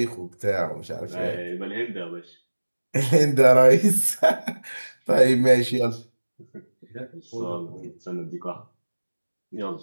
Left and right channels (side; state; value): both; inverted; correlation -1.00